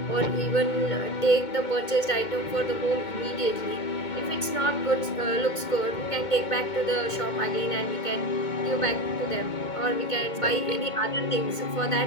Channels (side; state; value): right; late; 2.2 ms